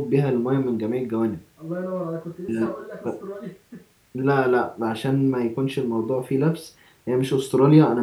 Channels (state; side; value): identical; both; correlation 1.00